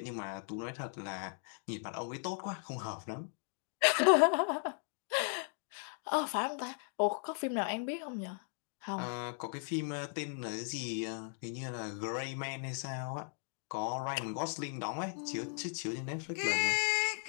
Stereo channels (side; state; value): right; silent; 53 dB below the other